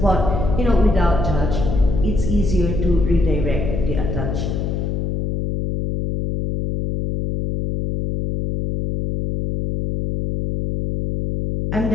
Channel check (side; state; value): left; noise; hum, 1 dB below the sound